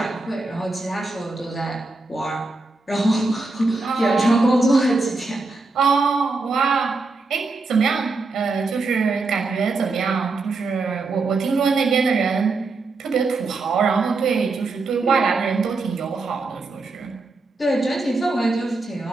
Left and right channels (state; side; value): quieter; left; 3.6 dB